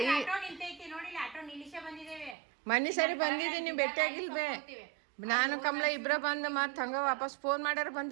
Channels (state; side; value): drops out; left; at 2.4 s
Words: ನಿಂತೈತಿ ನೋಡಿಲ್ಲ, ಆಟೋ ನಿಲ್ಲಿಸೇ ಬಂದಿದ್ದೇವೆ. ಮನಿ ಸರಿ ಬಂದಿದ್ದೀನಿ, ಭೇಟಿಯಾಗಿಲ್ ಬೇ. ನಾನು ಕಮಲ ಇಬ್ರ ಬಂದು ಮತ್ತೆ ಹಂಗ ವಾಪಸ್ ಫೋನ್ ಮಾಡ್ಯಾರ